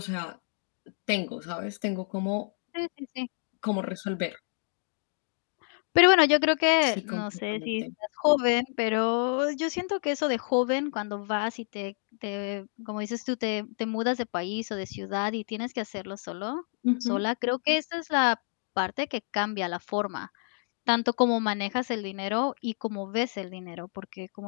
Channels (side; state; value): right; silent; 58 dB below the other